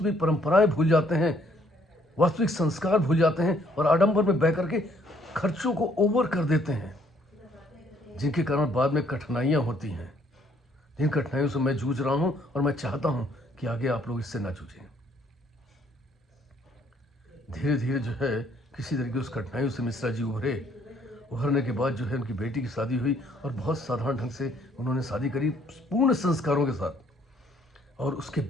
परंपराएं भूल जाते हैं, वास्तविक संस्कार भूल जाते हैं और आडंबर में बह करके खर्चों को ओवर कर देते हैं, जिनके कारण बाद में कठिनाइयां होती हैं। जिन कठिनाइयों से मैं जूझ रहा हूं और मैं चाहता हूं कि आगे आप लोग इससे ना जूझें। धीरे धीरे जो है किसी तरीके उस कठिनाइयों से मिश्रा जी उभरने के बाद जो है उनकी बेटी की शादी हुई और बहुत साधारण ढंग से उन्होंने शादी करी, पूर्ण संस्कारों के साथ। और उसके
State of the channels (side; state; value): both; normal; correlation 0.65